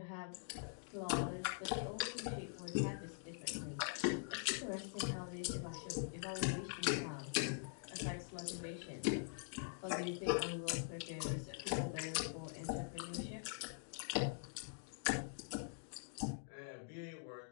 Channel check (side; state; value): right; silent; digital silence